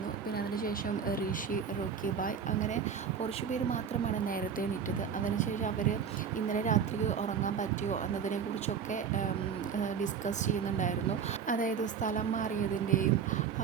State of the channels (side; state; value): left; quieter; 7.1 dB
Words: പിന്നെ അതിനുശേഷം ഋഷി, റോക്കി ബായ് അങ്ങനെ കുറച്ച് പേര് മാത്രമാണ് നേരത്തെ എണീറ്റത്. അതിനുശേഷം അവർ ഇന്നലെ രാത്രി ഉറങ്ങാൻ പറ്റിയോ എന്നതിനെക്കുറിച്ചൊക്കെ ഡിസ്കസ് ചെയ്യുന്നുണ്ടായിരുന്നു. അതായത് സ്ഥലം മാറിയതിൻ്റെയും